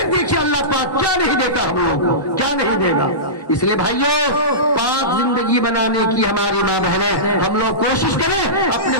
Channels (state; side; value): late; right; 1.1 ms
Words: دیکھیے اللہ پاک کیا نہیں دیتا ہم لوگوں کو، کیا نہیں دے گا۔ اس لیے بھائیوں پاک زندگی بنانے کی ہماری ماں بہنیں ہم لوگ کوشش کریں اپنے